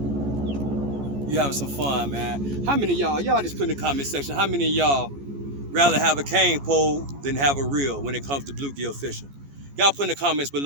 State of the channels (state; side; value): late; left; 14 ms